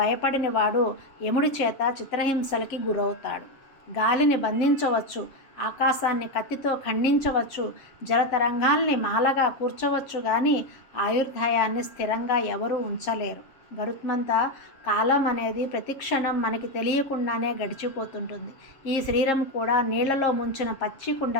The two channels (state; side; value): late; right; 7.4 ms